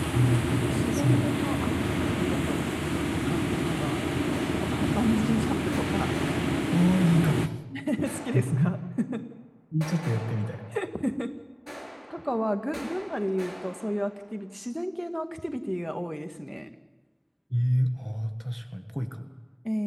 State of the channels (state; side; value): identical; both; correlation 1.00